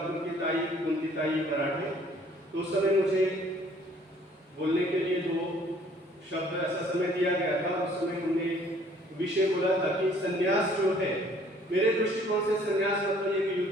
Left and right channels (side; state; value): both; normal; correlation 0.58